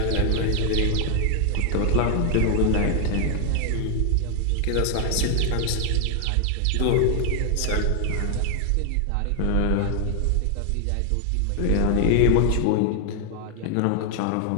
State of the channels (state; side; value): different; both; correlation 0.00